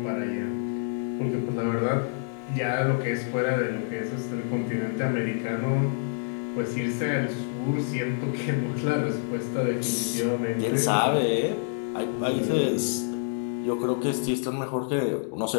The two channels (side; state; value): right; silent; digital silence